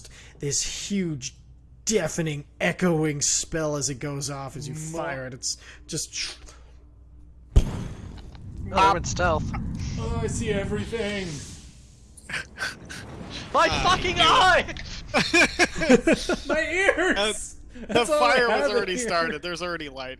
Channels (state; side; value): identical; both; correlation 1.00